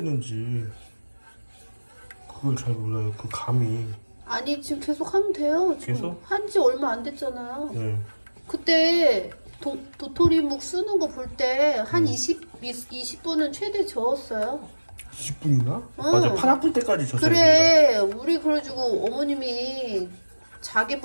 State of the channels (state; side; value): inverted; both; correlation -1.00